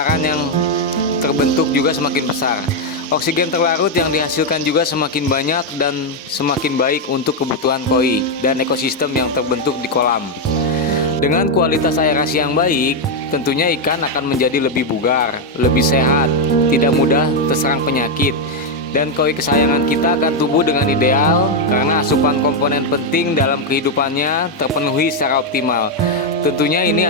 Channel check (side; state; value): both; normal; correlation 0.02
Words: yang terbentuk juga semakin besar. Oksigen terlarut yang dihasilkan juga semakin banyak dan semakin baik untuk kebutuhan koi dan ekosistem yang terbentuk di kolam. Dengan kualitas aerasi yang baik, tentunya ikan akan menjadi lebih bugar, lebih sehat, tidak mudah terserang penyakit, dan koi kesayangan kita akan tumbuh dengan ideal karena asupan komponen penting dalam kehidupannya terpenuhi secara optimal. Tentunya ini